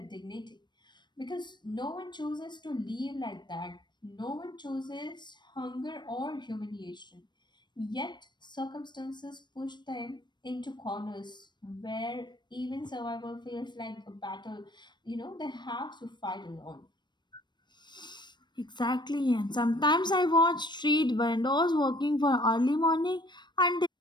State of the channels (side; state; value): right; late; 0.22 ms